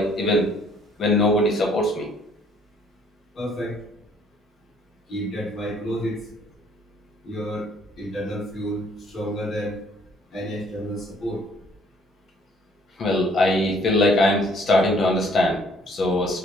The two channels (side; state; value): both; normal; correlation 0.62